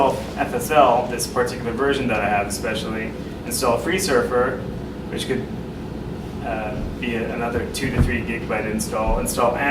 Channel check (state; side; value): identical; both; correlation 1.00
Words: FSL, this particular version that I have especially, install FreeSurfer, which could be another 2 to 3 gigabyte install